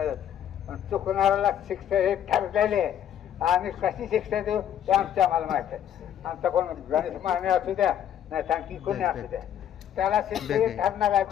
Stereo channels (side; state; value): right; quieter; 10.1 dB